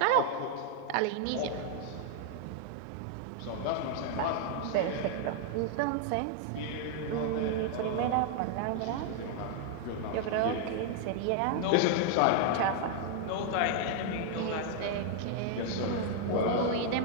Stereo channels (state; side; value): different; both; correlation 0.00